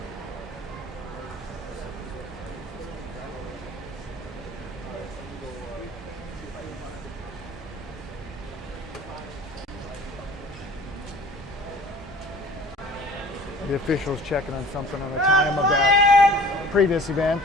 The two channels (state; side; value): normal; both; correlation 0.46